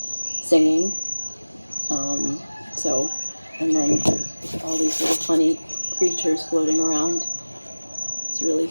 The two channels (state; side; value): inverted; both; correlation -1.00